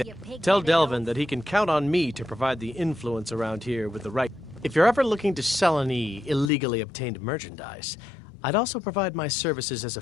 Tell Delvin that he can count on me to provide the influence around here with the right... If you're ever looking to sell any illegally obtained merchandise, I'd also provide my services as a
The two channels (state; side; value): drops out; right; at 6.5 s